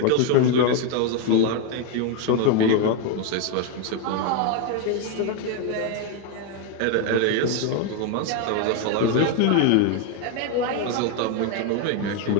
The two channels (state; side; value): different; both; correlation 0.01